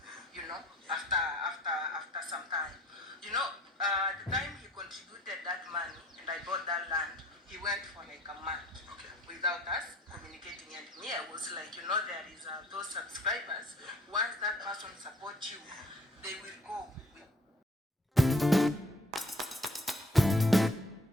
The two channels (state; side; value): normal; both; correlation 0.54